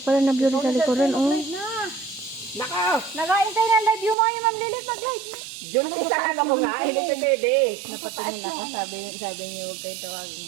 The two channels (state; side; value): drops out; left; at 4.2 s